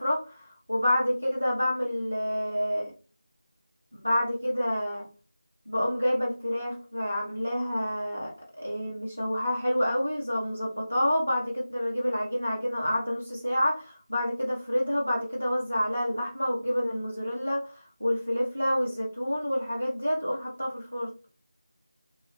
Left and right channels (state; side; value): inverted; both; correlation -0.96